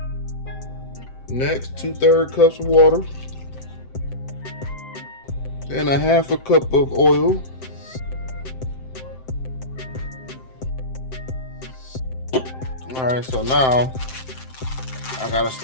Next, 2/3 cups of water. Then 1/2 cup of oil. Alright, so now I gotta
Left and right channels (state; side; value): late; right; 7.7 ms